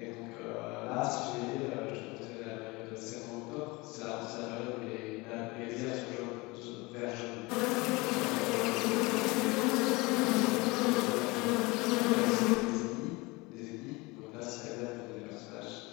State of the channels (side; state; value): right; quieter; 24.2 dB